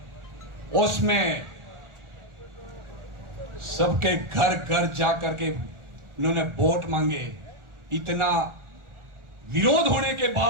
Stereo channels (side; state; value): left; late; 1.4 ms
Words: उसमें सबके घर घर जाकर के उन्होंने वोट मांगे। इतना विरोध होने के